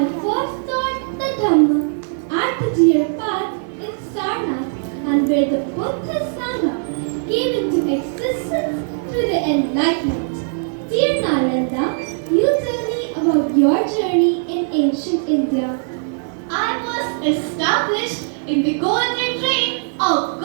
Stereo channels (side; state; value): left; silent; digital silence